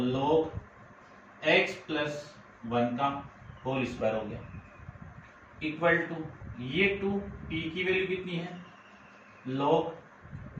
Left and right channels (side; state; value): both; identical; correlation 1.00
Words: log x प्लस 1 का होल स्क्वायर हो गया, इक्वल टू ये 2, p की वैल्यू कितनी है, log